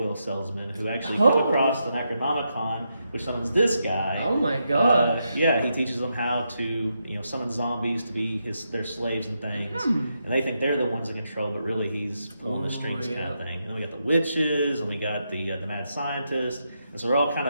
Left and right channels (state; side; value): inverted; both; correlation -0.83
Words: salesmen who actually come across the Necronomicon, which summons this guy. Oh my god! Yeah, he teaches them how to summon zombies to be their slaves and things, and they think they're the ones in control, but really he's pulling the strings kind of thing. And then we got the witches, and we got the mad scientist. And so we're all kind